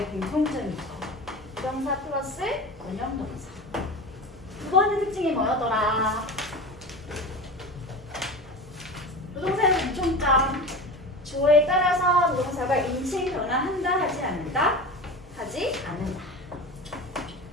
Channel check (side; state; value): both; normal; correlation 0.30